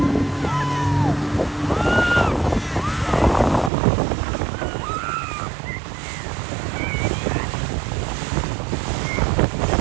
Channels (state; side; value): drops out; left; at 3.7 s